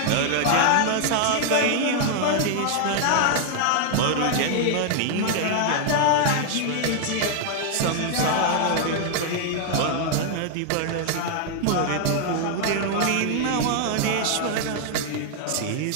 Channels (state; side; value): different; both; correlation 0.00